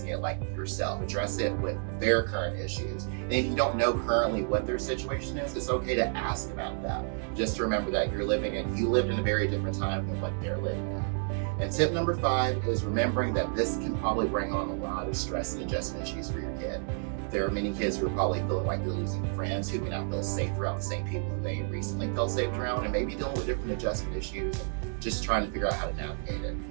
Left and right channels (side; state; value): left; silent; 58 dB below the other